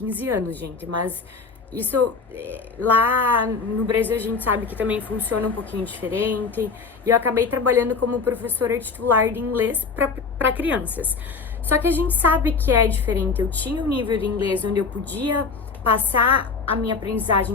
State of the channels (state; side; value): quieter; right; 4.9 dB